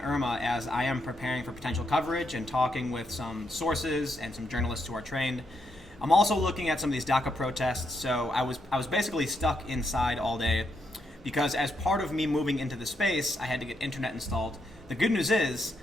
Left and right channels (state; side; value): normal; both; correlation 0.79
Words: as I am preparing for potential coverage and talking with some sources and some journalists who are trained. I'm also looking at some of these Daca protests. So I was basically stuck inside all day because as part of me moving into the space, I had to get internet installed. The good news is